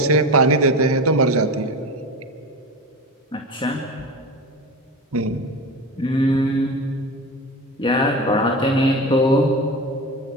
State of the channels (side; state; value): both; normal; correlation 0.27